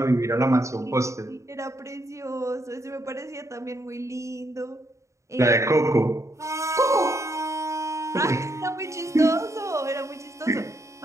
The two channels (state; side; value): late; left; 0.14 ms